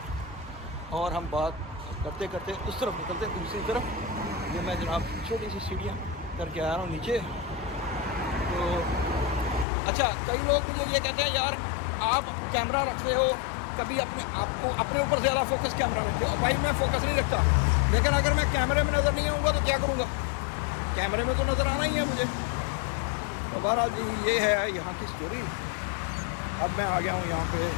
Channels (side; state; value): right; drops out; at 9.7 s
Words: اور ہم بات کرتے کرتے اس طرف نکلتے ہیں دوسری طرف. یہ میں جناب چھوٹی سی سیڑھیاں کر کے آ رہا ہوں نیچے. تو اچھا کئی لوگ مجھے یہ کہتے ہیں یار آپ کیمرہ رکھتے ہو کبھی آپ کو اپنے اوپر زیادہ فوکس کیمرہ رکھتے ہو. بھائی میں فوکس نہیں رکھتا, لیکن اگر میں کیمرے میں نظر نہیں آؤں گا تو کیا کروں گا؟ کیمرے میں تو نظر آنا ہی ہے مجھے. تو بہرحال جی یہ ہے یہاں کی اسٹوری. اب میں آ گیا ہوں یہاں پہ,